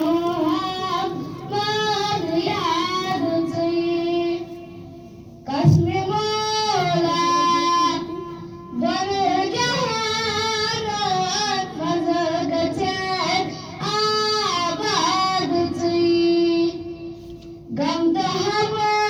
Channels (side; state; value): both; identical; correlation 1.00